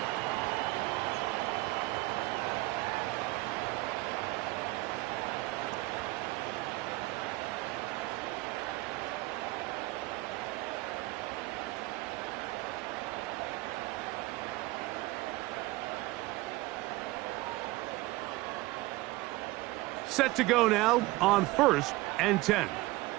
Set to go now on 1st and 10.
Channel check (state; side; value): quieter; left; 20.0 dB